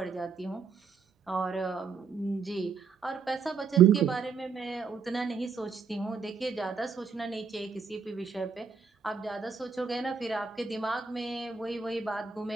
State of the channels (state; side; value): quieter; left; 5.6 dB